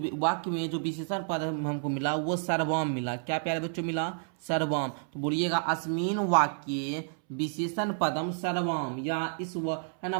वाक्य में जो विशेषण पद हमको मिला वो सर्वम मिला। क्या प्यारे बच्चों मिला, सर्वम। तो बोलिएगा अस्मिन वाक्य विशेषण पदम सर्वम, या है ना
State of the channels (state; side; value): silent; left; 58 dB below the other